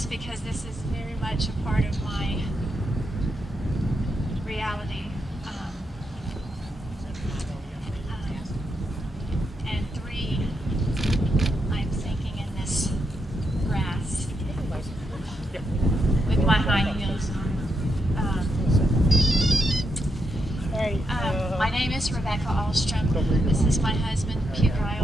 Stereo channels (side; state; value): both; normal; correlation 0.82